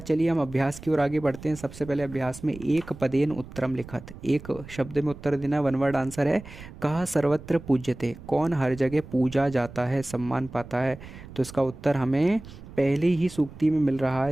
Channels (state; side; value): noise; right; rumble, 16 dB below the sound